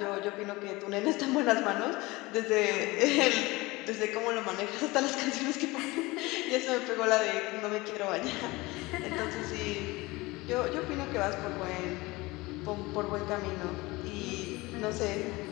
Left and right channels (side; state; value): right; quieter; 21.9 dB